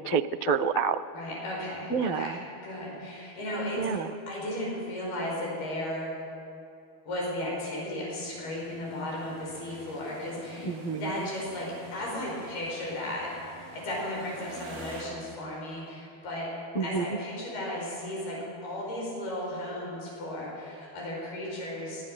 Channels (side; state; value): right; late; 13 ms